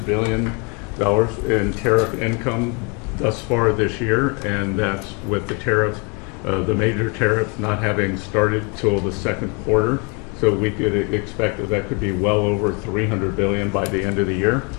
billion in tariff income thus far this year, and that's with the tariff, the major tariff not having started till the second quarter. So we could expect that could be well over $300 billion by the end of the year.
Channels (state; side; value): quieter; right; 32.2 dB